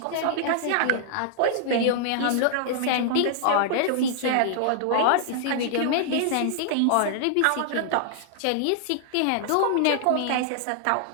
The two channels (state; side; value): different; both; correlation -0.01